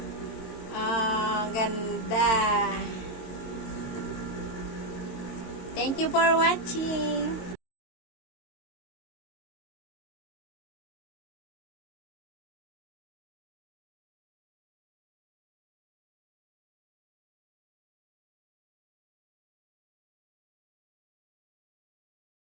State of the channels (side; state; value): right; late; 22 ms